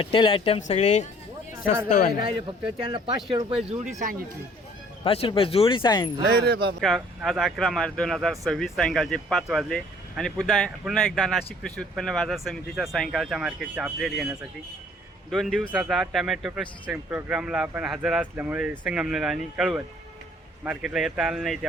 आयटम सगळे स्वस्त वाले. राहिले फक्त त्यांना 500 रुपये जोडी सांगितली. 500 रुपये जोडी सांगितली. नाही रे बाबा. आज 11 मार्च 2026 सायंकाळचे 5 वाजले आणि पुन्हा एकदा नाशिक कृषी उत्पन्न बाजार समितीच्या सायंकाळच्या मार्केटचे अपडेट घेण्यासाठी 2 दिवसाचा टमॅटो प्रशिक्षण प्रोग्रामला आपण हजर असल्यामुळे संगमनेर आणि कळवण मार्केटला येता आलं नाही,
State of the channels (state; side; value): normal; both; correlation 0.57